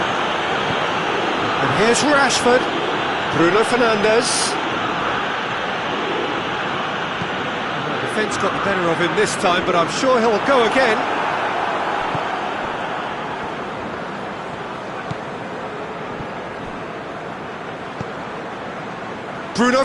And here's Rashford. Bruno Fernandes. The defence got the better of him this time, but I'm sure he'll go again. Bruno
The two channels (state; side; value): identical; both; correlation 1.00